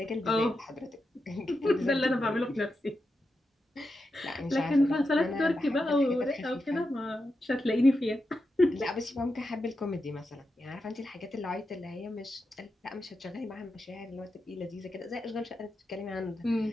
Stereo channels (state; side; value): normal; both; correlation 0.88